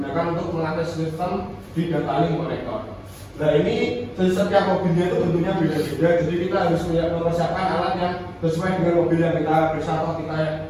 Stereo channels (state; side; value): identical; both; correlation 1.00